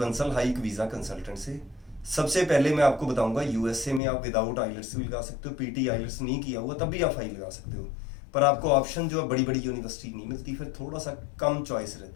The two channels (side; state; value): right; drops out; at 4.0 s